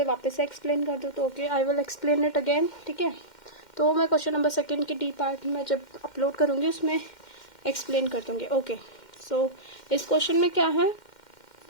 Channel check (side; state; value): right; late; 2.1 ms